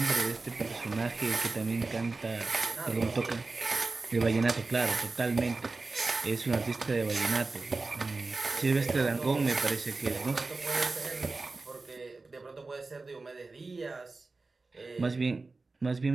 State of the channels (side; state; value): left; quieter; 3.7 dB